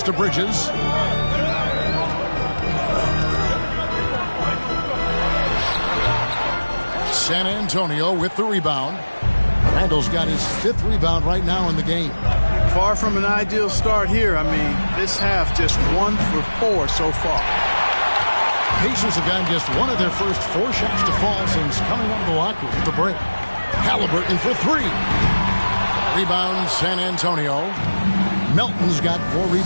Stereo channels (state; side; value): inverted; both; correlation -1.00